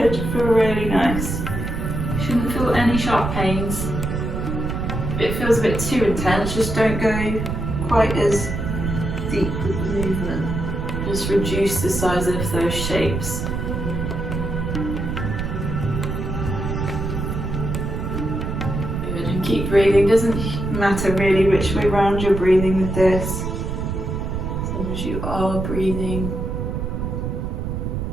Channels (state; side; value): noise; right; rumble, 3 dB below the sound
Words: feel really nice. You shouldn't feel any sharp pains. If it feels a bit too intense, just don't go quite as deep with the movement. Just reduce the size of those shapes. Good, and keep breathing. Doesn't matter really which way round you're breathing with this, as long as you are breathing.